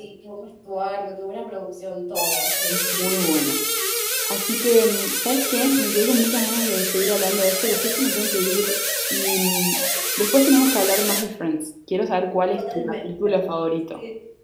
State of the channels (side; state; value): both; identical; correlation 1.00